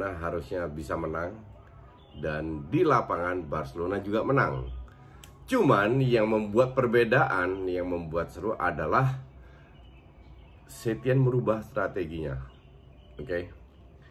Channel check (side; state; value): both; identical; correlation 1.00